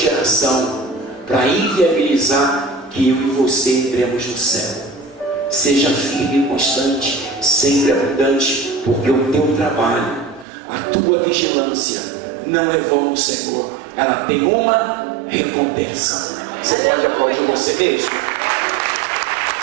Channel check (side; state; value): left; drops out; at 10.5 s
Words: para inviabilizar que eu e você entremos no céu. Seja firme e constante, sempre abundante, porque o teu trabalho, a tua vigilância não é vão no Senhor. Ela tem uma recompensa. Você pode aplaudir você mesmo?